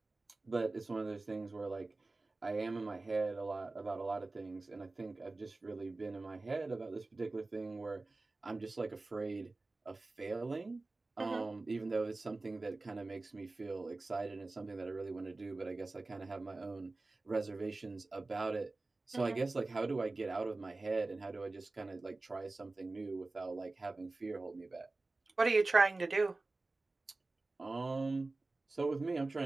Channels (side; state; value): left; quieter; 3.3 dB